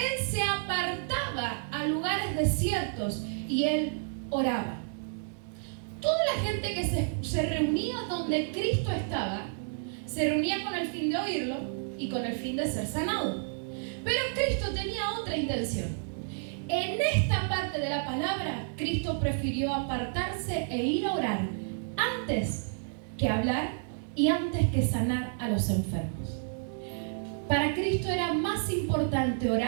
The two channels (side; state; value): left; silent; digital silence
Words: se apartaba a lugares desiertos y él oraba. Toda la gente que se reunía donde Cristo estaba, se reunía con el fin de oírlo y con el fin de ser sanado. Pero Cristo tenía otra intención. En esta parte de la palabra, Cristo prefirió apartarse e ir a orar antes que hablar y antes que sanar a los enfermos. Para Cristo era más importante